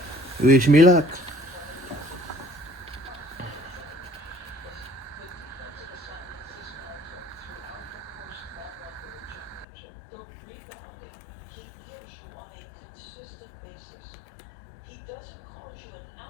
Wish me luck.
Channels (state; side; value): drops out; right; at 9.7 s